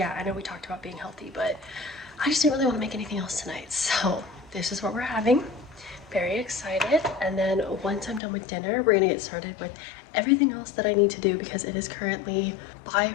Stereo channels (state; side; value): drops out; right; at 8.2 s